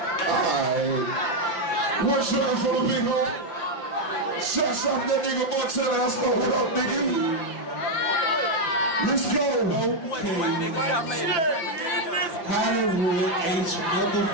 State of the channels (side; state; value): right; late; 6.0 ms